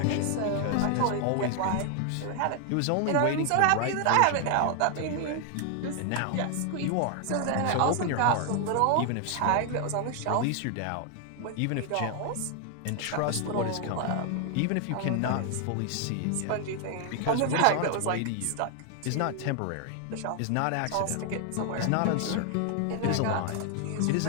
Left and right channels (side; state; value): both; different; correlation 0.00